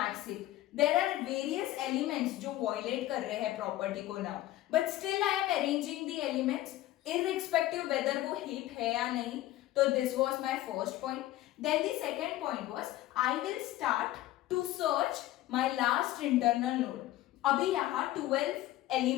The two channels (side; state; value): right; quieter; 15.2 dB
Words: heap. There are various elements जो वॉयलेट कर रहे हैं प्रॉपर्टी को now, but still I am arranging the elements irrespective whether वो heap है या नहीं. तो this was my first point. Then the second point was I will start to search my last internal node. अभी यहाँ 12